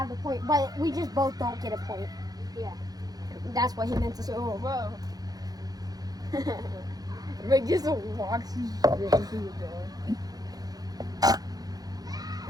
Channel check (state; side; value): late; left; 0.19 ms